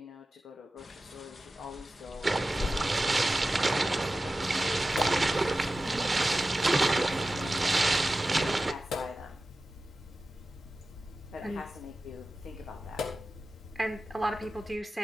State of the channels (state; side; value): normal; both; correlation 0.95